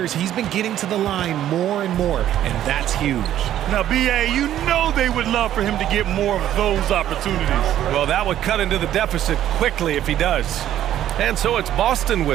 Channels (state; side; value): quieter; left; 11.8 dB